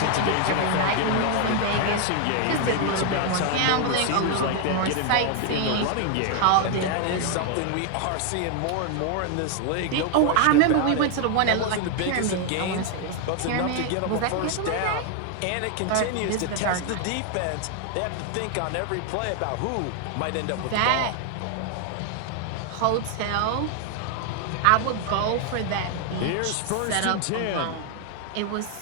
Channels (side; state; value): both; different; correlation 0.00